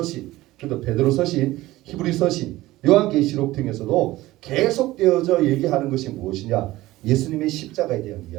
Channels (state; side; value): quieter; left; 17.4 dB